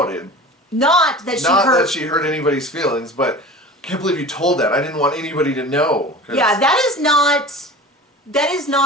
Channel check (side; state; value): both; normal; correlation 0.37